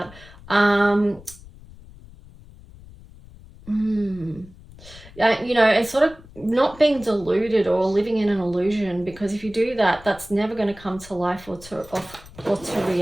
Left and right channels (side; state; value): left; noise; rumble, 20 dB below the sound